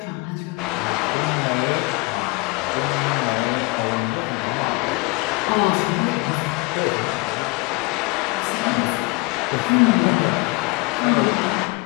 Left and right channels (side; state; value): right; quieter; 26.4 dB